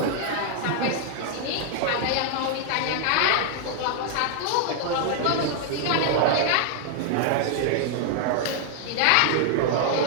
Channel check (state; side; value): different; both; correlation 0.00